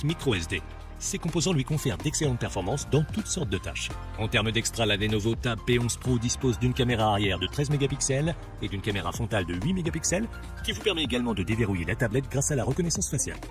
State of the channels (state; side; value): identical; both; correlation 1.00